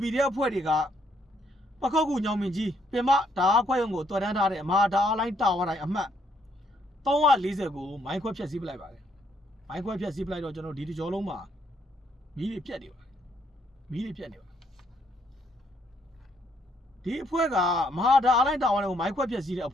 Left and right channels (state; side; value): normal; both; correlation 0.71